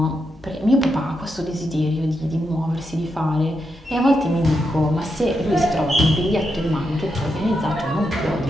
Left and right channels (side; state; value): both; normal; correlation 0.84